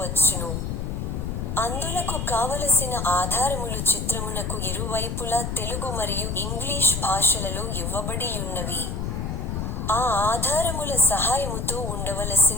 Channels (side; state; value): left; noise; rumble, 3 dB below the sound